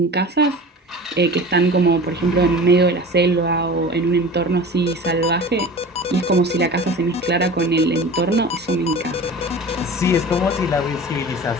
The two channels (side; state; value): both; normal; correlation 0.37